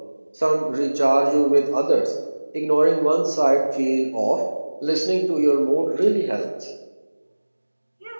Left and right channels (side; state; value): both; inverted; correlation -1.00